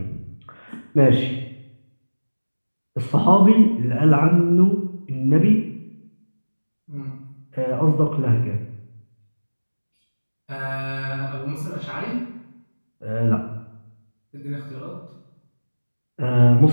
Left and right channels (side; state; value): both; inverted; correlation -1.00